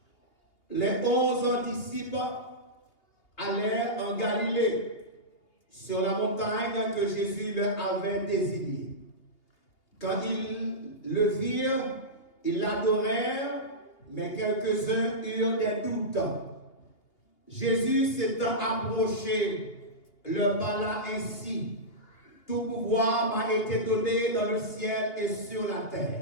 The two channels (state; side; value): late; right; 2.8 ms